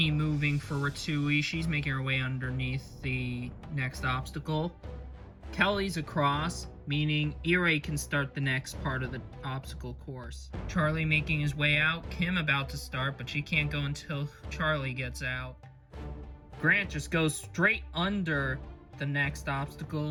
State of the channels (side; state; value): both; identical; correlation 1.00